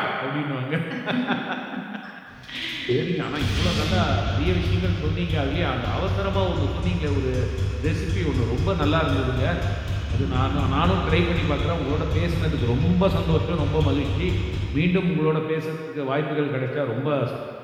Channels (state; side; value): identical; both; correlation 1.00